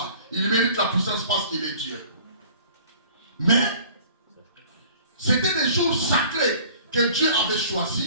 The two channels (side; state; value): both; inverted; correlation -0.50